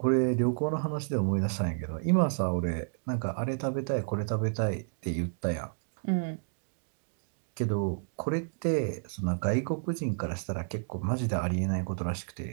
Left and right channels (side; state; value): left; silent; digital silence